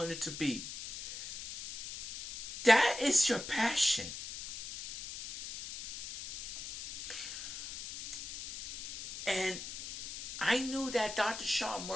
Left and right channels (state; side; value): noise; left; hiss, 8 dB below the sound